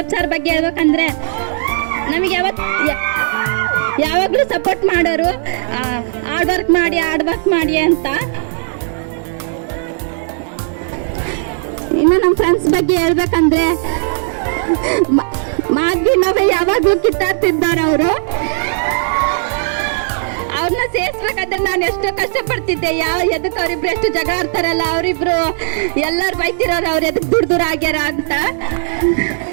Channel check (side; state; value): left; silent; 58 dB below the other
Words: ಸರ್ ಬಗ್ಗೆ ಹೇಳ್ಬೇಕಂದ್ರೆ ನಮಗೆ ಯಾವಾಗಲೂ ಸಪೋರ್ಟ್ ಮಾಡೋರು, ಹಾರ್ಡ್ ವರ್ಕ್ ಮಾಡಿ ಅಂತ. ಇನ್ನು ನಮ್ಮ ಫ್ರೆಂಡ್ಸ್ ಬಗ್ಗೆ ಹೇಳ್ಬೇಕಂದ್ರೆ ಮಾದ್ವಿನವೇ ಯಾವಾಗಲೂ ಕಿತ್ತಾಡ್ತಿದ್ದಾರೆ ಅವರು. ಅವ್ರನ್ನ ಸೇರಿಸ್ಬೇಕಾದ್ರೆ ನಾನು ಎಷ್ಟೋ ಕಷ್ಟಪಡ್ತಿದ್ದೆ. ಎದಕ್ಕೆ ಅವರಿಬ್ರು ಎಷ್ಟು ಜಗಳ ಆಡ್ತಾರಲ್ಲ, ಅವರಿಬ್ರು ಎಲ್ಲರೂ ಬೈತಿರೋರು, ಅವ್ರು ಎದಕ್ಕೆ ದೂರ ಆಗ್ಯಾರ ಅಂತ.